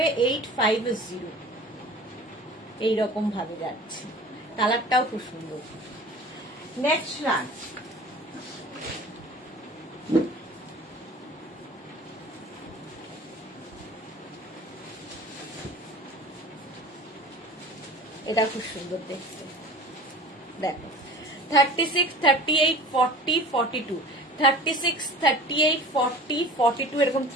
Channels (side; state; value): both; normal; correlation 0.41